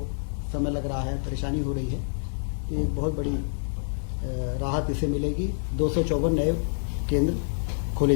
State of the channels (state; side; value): silent; right; digital silence